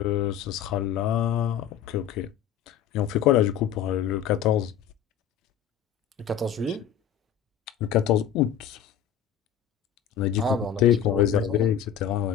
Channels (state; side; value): quieter; right; 9.1 dB